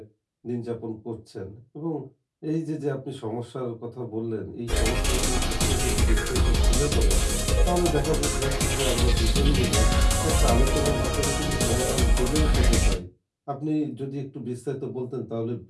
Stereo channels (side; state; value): both; identical; correlation 1.00